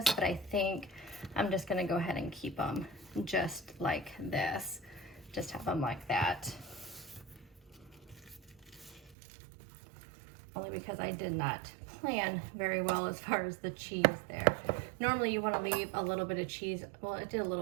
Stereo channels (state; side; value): drops out; left; at 9.2 s